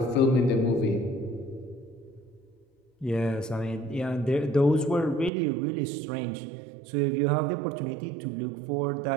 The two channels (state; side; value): drops out; left; at 5.3 s